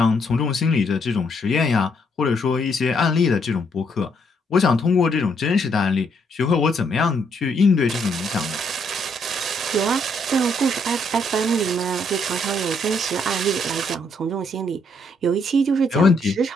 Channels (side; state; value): both; normal; correlation 0.72